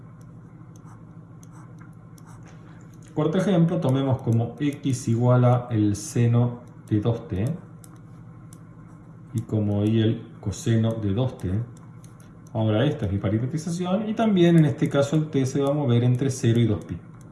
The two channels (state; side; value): identical; both; correlation 1.00